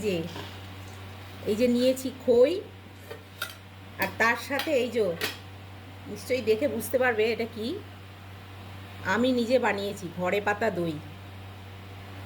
যে এই যে নিয়েছি খই, আর তার সাথে এই যে নিশ্চয়ই দেখে বুঝতে পারবে এটা কি। আমি নিজে বানিয়েছি ঘরে পাতা দই।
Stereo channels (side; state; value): both; identical; correlation 1.00